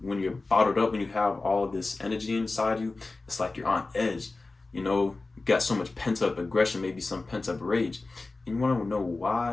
when you're bottled up, when you have all of this energy inside you, it's like you're on edge. You got so much pent up aggression, maybe some pent up rage. And you want to know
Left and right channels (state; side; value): quieter; right; 3.5 dB